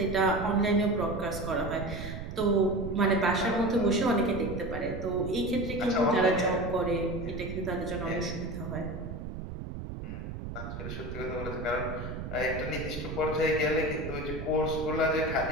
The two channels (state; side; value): noise; right; rumble, 7 dB below the sound